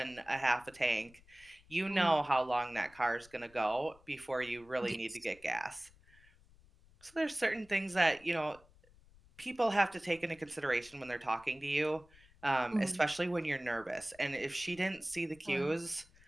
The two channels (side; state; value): left; noise; rumble, 26 dB below the sound